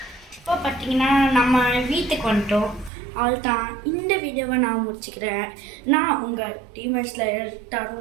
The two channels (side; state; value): left; drops out; at 2.9 s